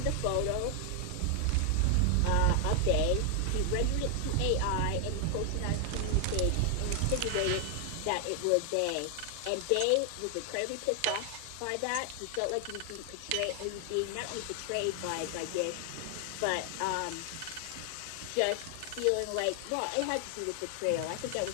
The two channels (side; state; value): both; different; correlation 0.00